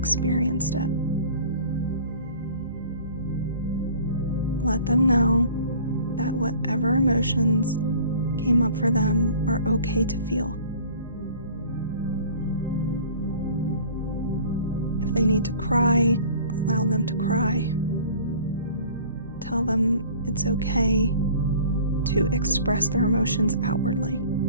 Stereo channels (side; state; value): both; inverted; correlation -0.47